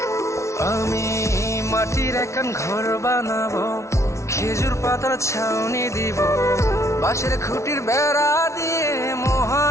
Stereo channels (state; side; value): late; right; 0.14 ms